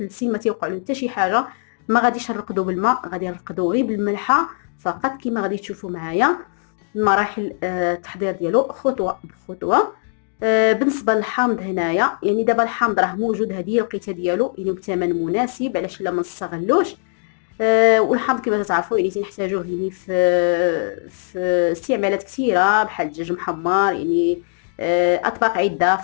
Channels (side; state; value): right; silent; digital silence